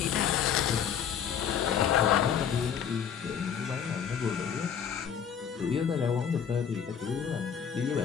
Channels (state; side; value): quieter; right; 7.9 dB